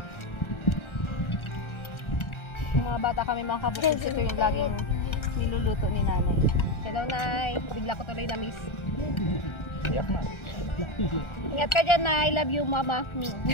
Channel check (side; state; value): right; late; 1.4 ms